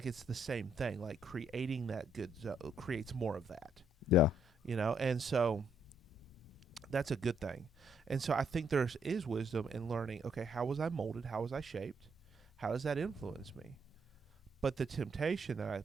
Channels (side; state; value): both; normal; correlation 0.71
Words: it's the same thing. Like creating that good creates more of that. Yeah. You know, and so that's a good thing. And so I think there is wisdom in learning, okay, how was I molded? How was I shaped? How does that influence me? But the temptation that I